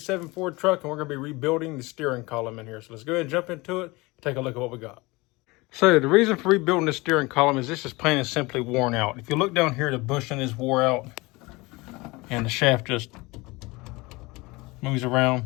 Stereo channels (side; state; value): right; quieter; 23.3 dB